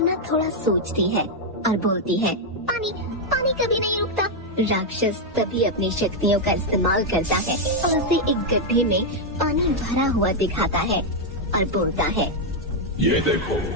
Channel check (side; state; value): both; normal; correlation 0.00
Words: थोड़ा सोचती है और बोलती है, पानी, पानी कभी नहीं रुकता। राक्षस तभी अपनी शक्तियों का इस्तेमाल करता है और उसे एक गड्ढे में पानी भरा हुआ दिखाता है और बोलता है, ये देखो,